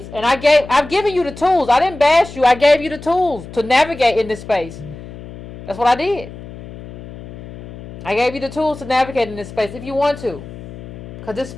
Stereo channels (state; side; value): noise; left; hum, 14 dB below the sound